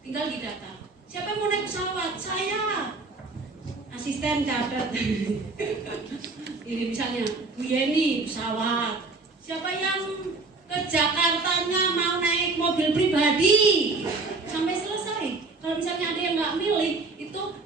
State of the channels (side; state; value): left; quieter; 3.7 dB